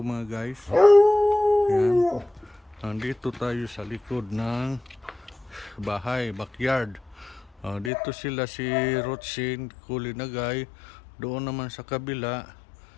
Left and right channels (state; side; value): drops out; right; at 7.9 s